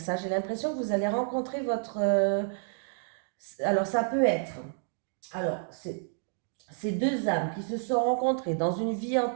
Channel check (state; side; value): silent; left; digital silence